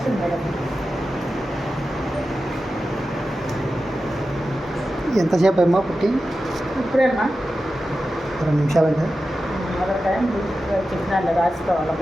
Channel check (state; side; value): normal; both; correlation 0.92